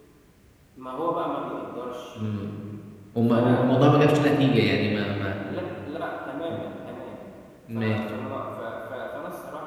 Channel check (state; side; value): identical; both; correlation 1.00